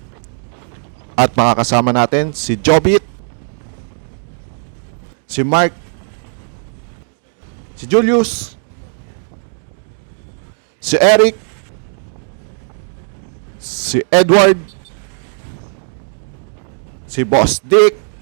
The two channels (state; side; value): silent; left; 68 dB below the other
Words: At makakasama natin si Jobit, si Mark, si Julius, si Eric, si Edward, si Boss Dick,